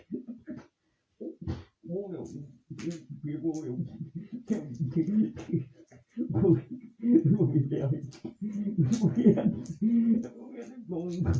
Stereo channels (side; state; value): both; identical; correlation 1.00